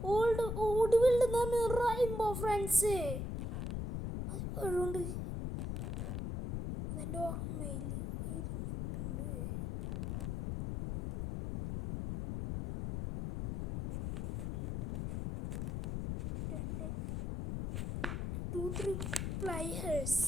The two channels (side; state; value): left; noise; rumble, 3 dB below the sound